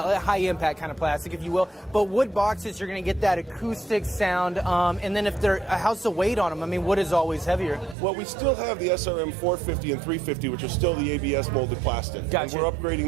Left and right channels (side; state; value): left; drops out; at 8.0 s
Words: kind of plastic, if you will. But wood boxes, you're going to get that acoustic sound. And then how's the weight on them? I mean, wood is always heavier. Well, we still have the SRM 450 and 350, which are still the ABS molded plastic. Gotcha. And we're